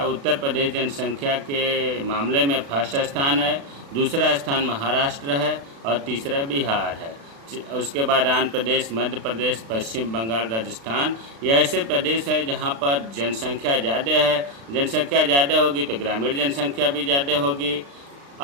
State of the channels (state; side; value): late; left; 36 ms